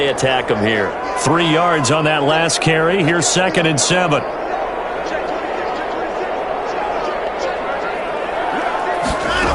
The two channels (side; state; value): both; identical; correlation 1.00